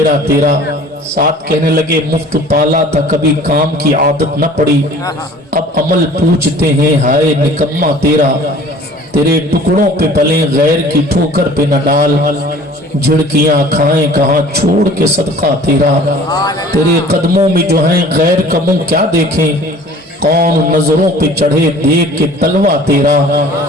تیرا۔ ساتھ کہنے لگے مفت پالا تھا کبھی کام کی عادت نہ پڑی، اب عمل پوچھتے ہیں ہائے نکما تیرا، تیرے ٹکڑوں پہ پلیں غیر کی ٹھوکر پہ نہ ڈال، جھڑکیاں کھائیں کہاں چھوڑ کے صدقہ تیرا، تیرے قدموں میں جو ہیں غیر کا منہ کیا دیکھیں، کون نظروں پہ چڑھے دیکھ کے تلوہ تیرا،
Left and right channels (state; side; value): normal; both; correlation 0.48